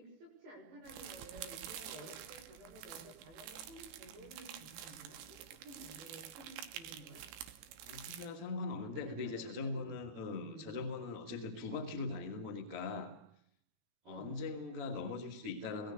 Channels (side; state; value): left; late; 18 ms